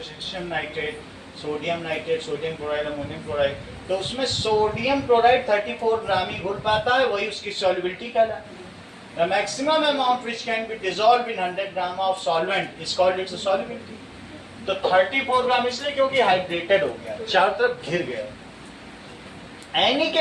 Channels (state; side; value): identical; both; correlation 1.00